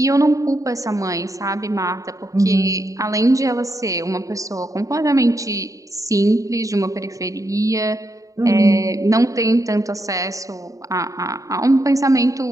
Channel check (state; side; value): late; left; 0.16 ms